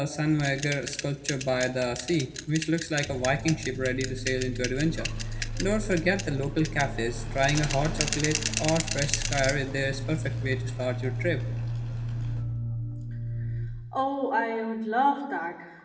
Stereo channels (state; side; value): identical; both; correlation 1.00